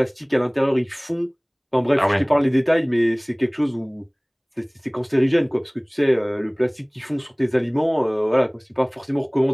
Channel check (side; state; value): both; identical; correlation 1.00